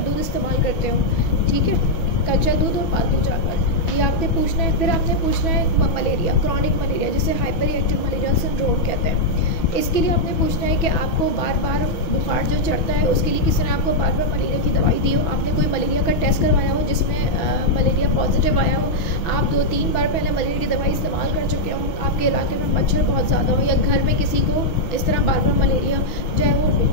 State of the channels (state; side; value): late; right; 6.1 ms